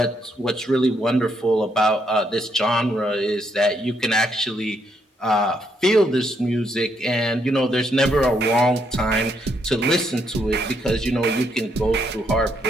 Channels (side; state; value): both; normal; correlation 0.75